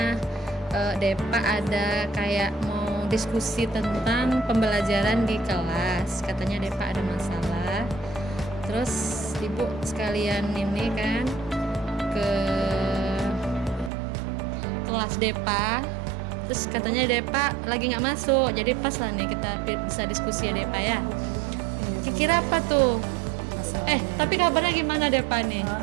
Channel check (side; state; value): left; drops out; at 13.9 s